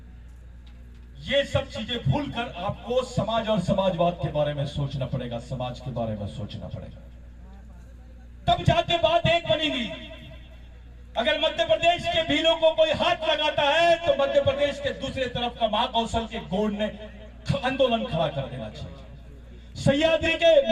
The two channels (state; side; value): identical; both; correlation 1.00